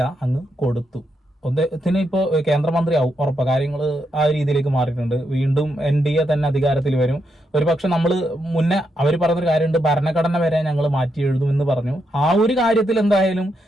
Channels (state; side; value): normal; both; correlation 0.81